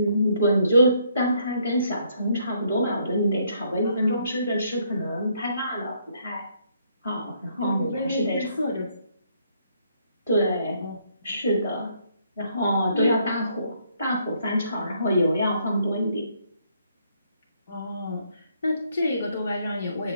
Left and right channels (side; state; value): both; inverted; correlation -0.70